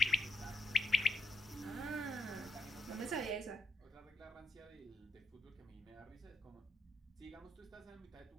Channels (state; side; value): normal; both; correlation 0.83